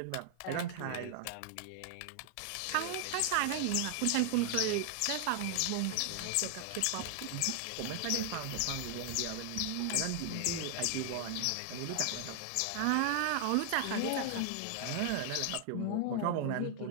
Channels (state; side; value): different; both; correlation 0.00